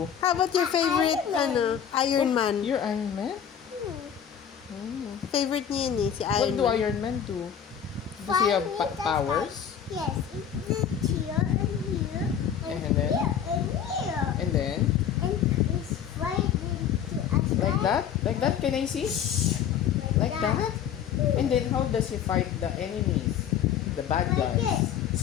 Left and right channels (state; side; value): quieter; right; 8.7 dB